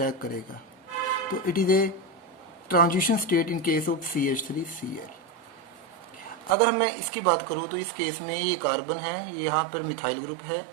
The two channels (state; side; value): drops out; left; at 6.6 s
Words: करेगा। तो it is a transition state in case of CH3Cl। अगर मैं इसकी बात करूँ तो इस केस में ये कार्बन है, ये यहाँ पर मिथाइल ग्रुप है,